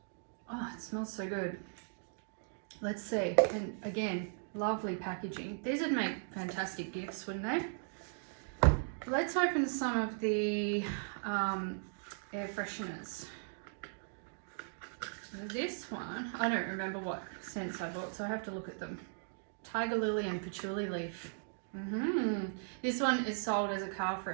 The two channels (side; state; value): left; silent; digital silence